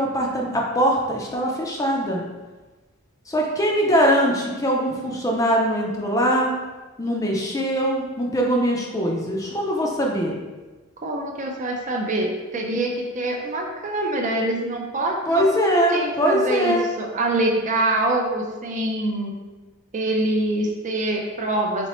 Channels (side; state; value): both; normal; correlation 0.30